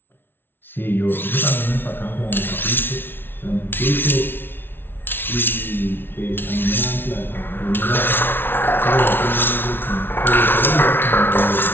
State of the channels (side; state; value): right; late; 0.10 ms